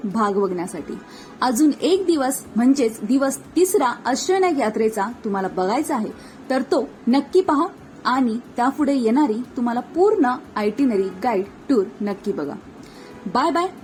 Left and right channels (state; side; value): identical; both; correlation 1.00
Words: भाग बघण्यासाठी. अजून एक दिवस म्हणजेच दिवस 3 अष्टविनायक यात्रेचा तुम्हाला बघायचा आहे तर तो नक्की पहा आणि त्यापुढे येणारी तुम्हाला पूर्ण आयटिनरी गाईड टूर नक्की बघा. Bye bye.